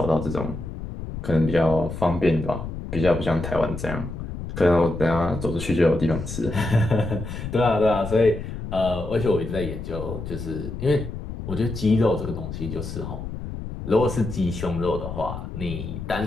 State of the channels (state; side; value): noise; left; rumble, 8 dB below the sound